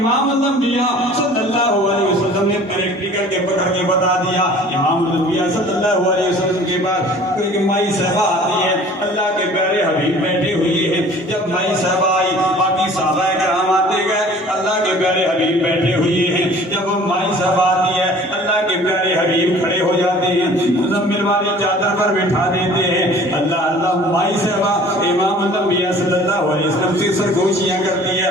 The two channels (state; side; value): normal; both; correlation 0.48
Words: الانبیاء صلی اللہ علیہ وسلم نے پریکٹیکل کے پکڑ کے بتا دیا۔ امام الانبیاء صلی اللہ علیہ وسلم کے بعد ایک مائی صاحبہ آتی ہے، اللہ کے پیارے حبیب بیٹھے ہوئے ہیں۔ جب مائی صاحبہ آئی، باقی صحابہ کرام آتے گئے، اللہ کے پیارے حبیب بیٹھے ہوئے ہیں۔ جب وہ مائی صاحبہ آتی ہے، اللہ کے پیارے حبیب کھڑے ہو جاتے ہیں، مزمل والی چادر پر بٹھا دیتے ہیں۔ اللہ اللہ مائی صاحبہ امام الانبیاء صلی اللہ علیہ وسلم سے سرگوشیاں کرتی ہے۔